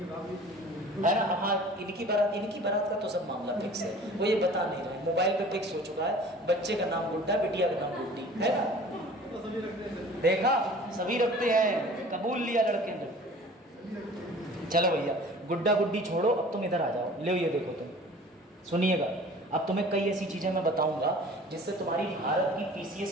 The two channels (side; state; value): both; normal; correlation 0.45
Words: हाँ इनकी बारात का तो सब मामला फिक्स है, वो ये बता नहीं रहे, मोबाइल पे फिक्स हो चुका है, बच्चे का नाम गुड्डा, बिटिया का नाम गुड्डी, है ना। देखा सभी रखते हैं, कबूल लिया लड़के ने। चलो भैया गुड्डा गुड्डी छोड़ो, अब तुम इधर आ जाओ, ले ये देखो तुम सुनिएगा। अब तुम्हें कई ऐसी चीजें मैं बताऊंगा जिससे तुम्हारी भारत की